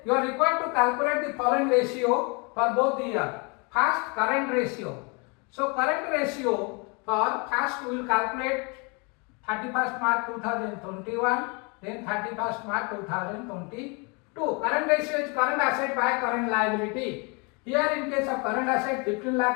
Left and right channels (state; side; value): quieter; right; 31.8 dB